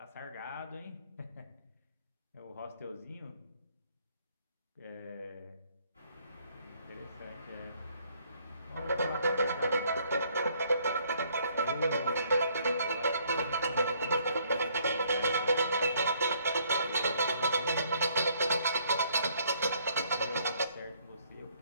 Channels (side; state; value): both; inverted; correlation -0.65